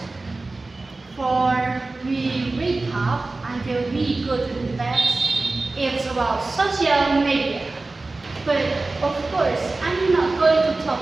for we wake up until we go to bed. It's about social media. But of course, I'm not going to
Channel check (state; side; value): quieter; left; 3.3 dB